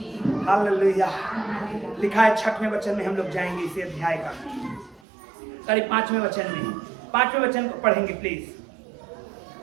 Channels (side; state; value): left; drops out; at 5.0 s